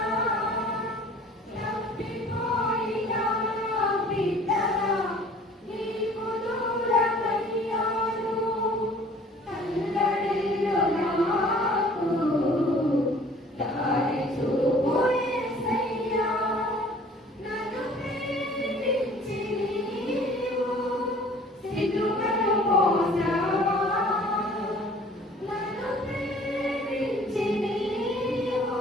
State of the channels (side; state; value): both; normal; correlation 0.51